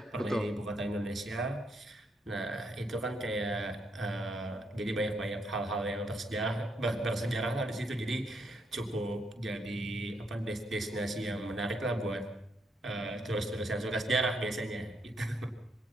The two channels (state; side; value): normal; both; correlation 0.76